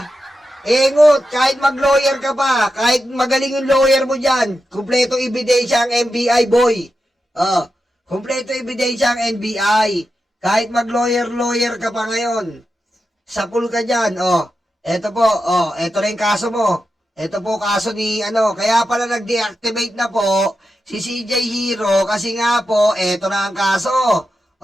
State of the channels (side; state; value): both; normal; correlation 0.89